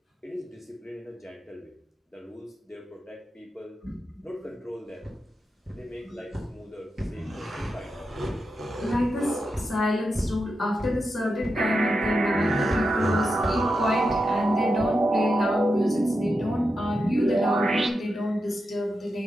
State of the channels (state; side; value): normal; both; correlation 0.88